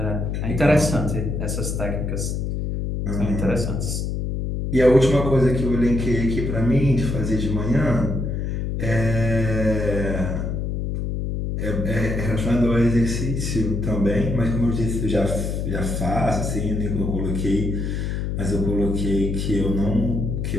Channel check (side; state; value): left; noise; hum, 2 dB below the sound